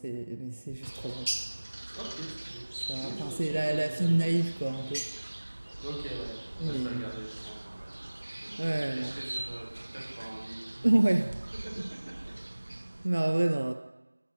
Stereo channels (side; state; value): both; inverted; correlation -1.00